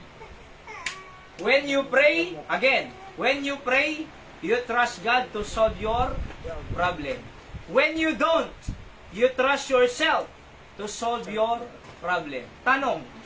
When you pray, you trust God to solve your problem. When you don't, you trust yourself to solve your problem. Tanong,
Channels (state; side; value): identical; both; correlation 1.00